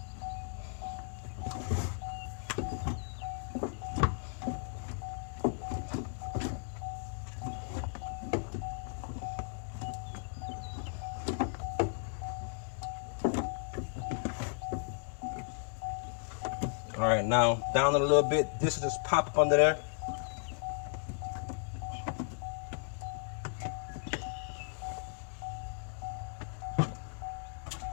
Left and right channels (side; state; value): right; silent; 54 dB below the other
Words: All right, now down it a little bit. This will just pop up under there.